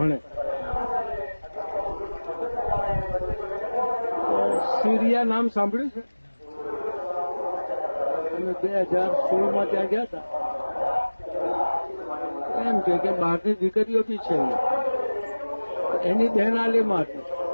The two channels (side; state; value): both; inverted; correlation -1.00